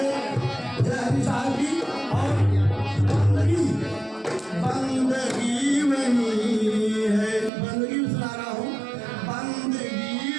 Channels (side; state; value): left; drops out; at 7.5 s